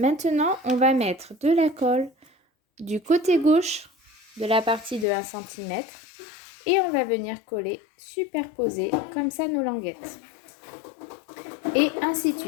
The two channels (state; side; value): drops out; right; at 5.1 s